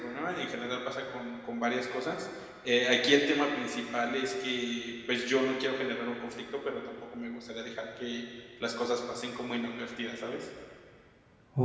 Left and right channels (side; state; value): both; identical; correlation 1.00